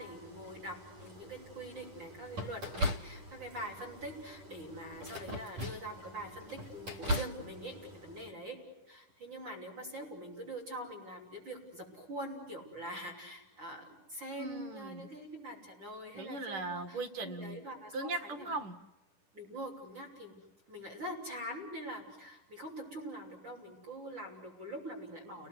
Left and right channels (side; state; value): left; late; 10 ms